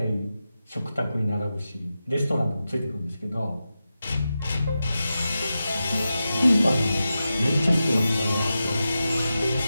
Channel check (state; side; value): inverted; both; correlation -0.91